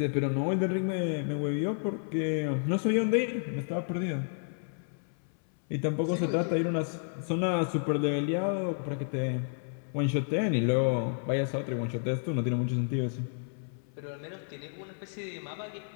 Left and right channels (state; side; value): silent; right; 57 dB below the other